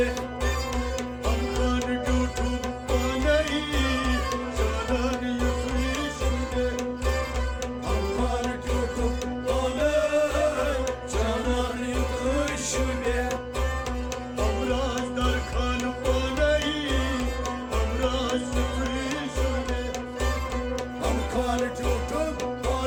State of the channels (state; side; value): identical; both; correlation 1.00